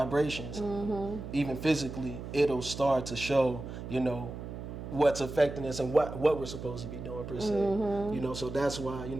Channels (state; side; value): noise; right; hum, 9 dB below the sound